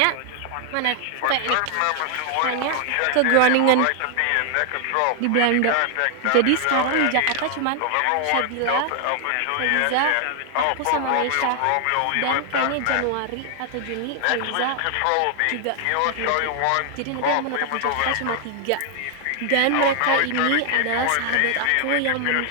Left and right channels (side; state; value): both; different; correlation 0.00